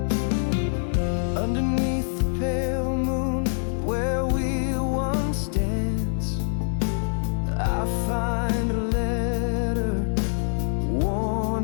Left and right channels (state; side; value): silent; right; digital silence